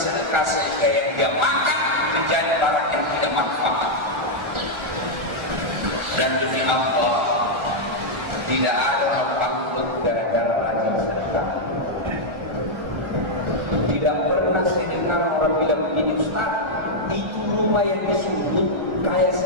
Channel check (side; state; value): left; late; 1.4 ms